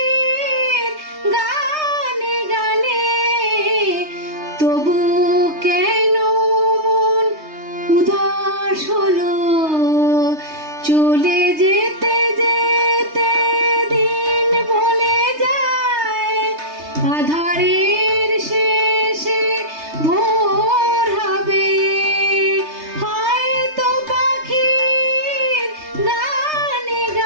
গানে গানে তবু কেন মন উদাস হলো। চলে যেতে যেতে দিন বলে যায়, আধারের শেষে ভোর হবে। হয়তো পাখির গানে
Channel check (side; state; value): left; late; 3.2 ms